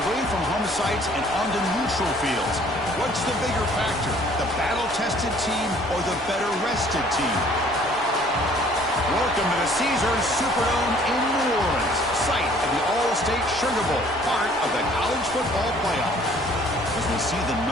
away from home sites and onto neutral fields. What's the bigger factor, the battle-tested team or the better-rested team? Welcome to the Caesars Superdome in New Orleans, site of the All-State Sugar Bowl, part of the college football playoff. As we see the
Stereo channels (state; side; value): normal; both; correlation 0.57